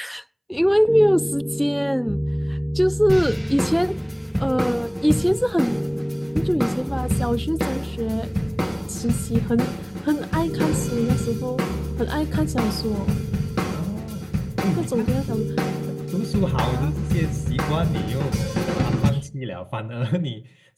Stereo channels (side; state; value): both; identical; correlation 1.00